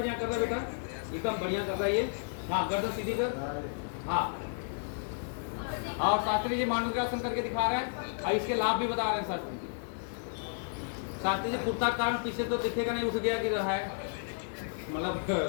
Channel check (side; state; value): right; silent; digital silence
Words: कर रहा बेटा। एकदम बढ़िया कर रहा है ये। हाँ गर्दन सीधी कर। हाँ और शास्त्री जी मांडूक्यासन करके दिखा रहे हैं और इसके लाभ भी बता रहे हैं शास्त्री जी। शास्त्री जी कुर्ता के कारण पीछे तो दिखेगा नहीं, उठ गया कि रहा है, मतलब